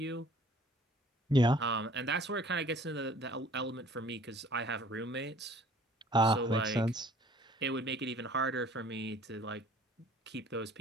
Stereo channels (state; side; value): normal; both; correlation 0.53